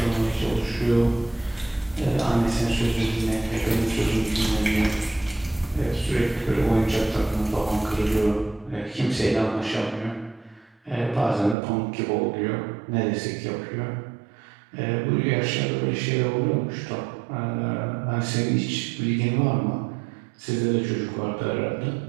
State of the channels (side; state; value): left; drops out; at 11.6 s